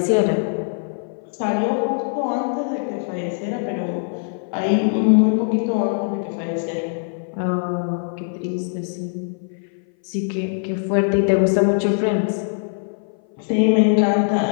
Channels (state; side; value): silent; right; 59 dB below the other